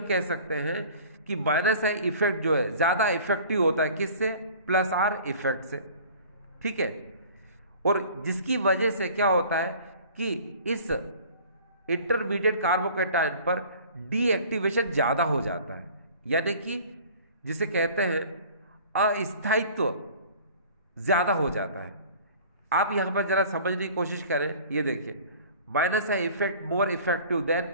कह सकते हैं कि माइनस आई इफेक्ट जो है ज्यादा इफेक्टिव होता है किससे, प्लस आर इफेक्ट से, ठीक है। और जिसकी वजह से क्या होता है कि इस इंटरमीडिएट कार्बोकैटायन पर डीएक्टिवेशन ज्यादा हो जाता है, यानी कि जिसे कहते हैं अस्थायित्व ज्यादा हो जाता है। आप यहां पर जरा समझने की कोशिश करें, ये देखिए minus I effect more effective than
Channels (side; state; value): both; inverted; correlation -0.47